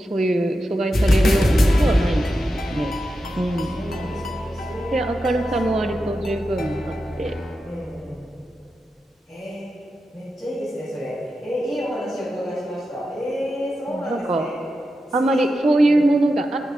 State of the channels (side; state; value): both; normal; correlation 0.90